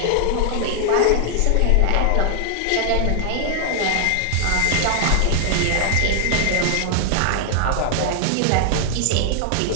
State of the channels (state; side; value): different; both; correlation 0.00